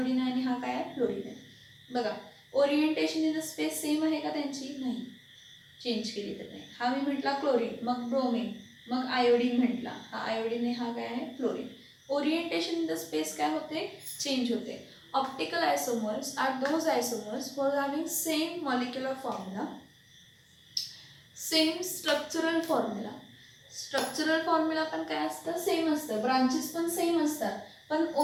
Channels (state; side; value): identical; both; correlation 1.00